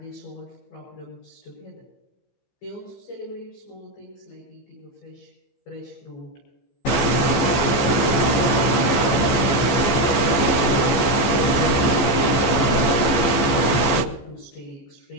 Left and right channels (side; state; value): right; late; 15 ms